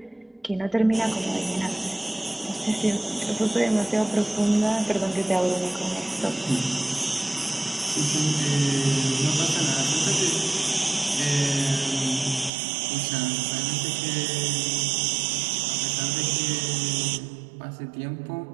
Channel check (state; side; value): drops out; left; at 12.5 s